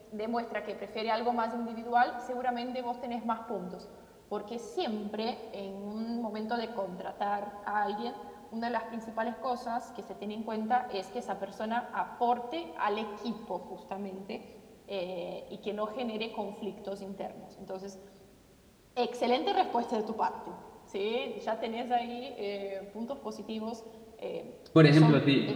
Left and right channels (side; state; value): both; identical; correlation 1.00